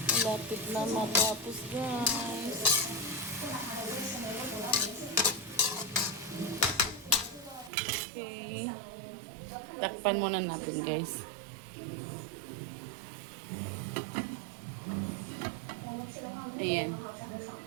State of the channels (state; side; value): drops out; left; at 7.7 s